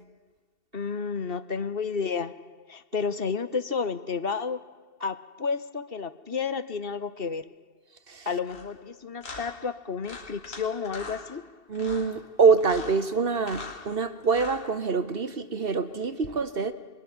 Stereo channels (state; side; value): late; left; 2.7 ms